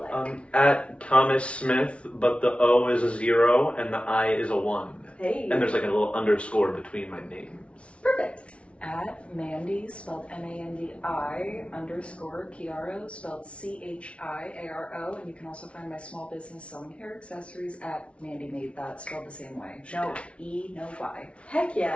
at Thomas Smith, but the O is a 0 and the I is a 1. Hey. And there's a little underscore between my names. Perfect. At Mandi, spelled Mandi _ Chiaro, spelled Chiaro, and you can also find my small business selling hair accessories at Mandi Made That, spelled the same way. No E, no Y. Heck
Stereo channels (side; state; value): right; late; 0.061 ms